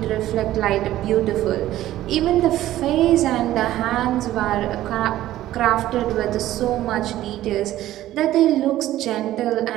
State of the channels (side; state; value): left; quieter; 14.2 dB